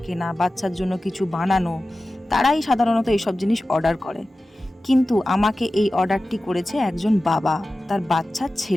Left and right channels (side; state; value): both; normal; correlation 0.95